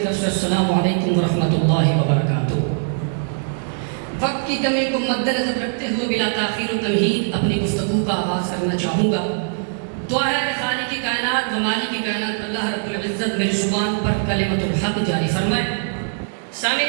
سے السلام علیکم ورحمۃ اللہ وبرکاتہ۔ وقت کی کمی کو مد نظر رکھتے ہوئے بلا تاخیر و تمہید اپنی گفتگو کا آغاز کرنا چاہوں گا۔ دعا ہے کہ خالق کی کائنات و مالک کی کائنات اللہ رب العزت میری زبان پر کلمۃ الحق جاری فرمائے۔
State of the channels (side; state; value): left; silent; digital silence